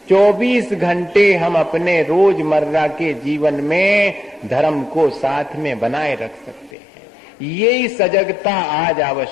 24 घंटे हम अपने रोजमर्रा के जीवन में धर्म को साथ में बनाए रख सकते हैं। यही सजगता आज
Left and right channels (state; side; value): drops out; right; at 6.7 s